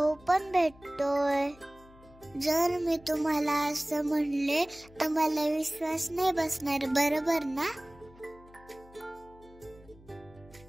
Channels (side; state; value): left; noise; hum, 24 dB below the sound